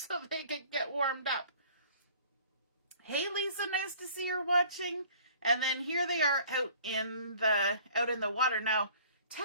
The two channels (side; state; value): both; inverted; correlation -0.51